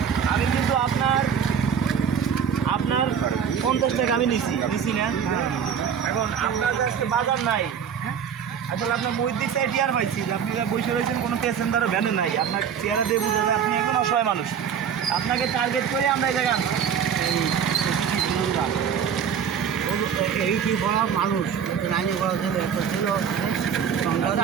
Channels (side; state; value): left; quieter; 7.6 dB